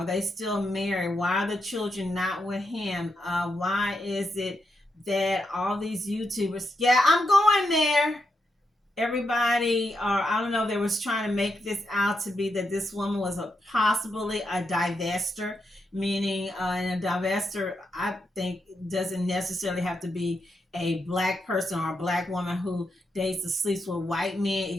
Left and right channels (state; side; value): normal; both; correlation 0.83